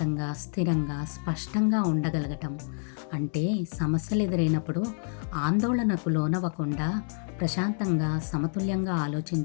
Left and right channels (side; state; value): right; silent; 59 dB below the other